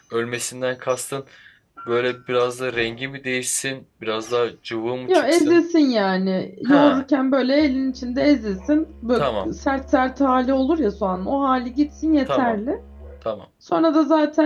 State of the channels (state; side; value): identical; both; correlation 1.00